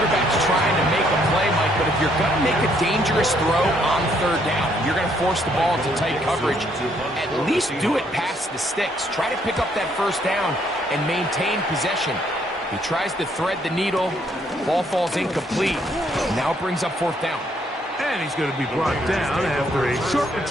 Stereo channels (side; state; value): both; normal; correlation 0.69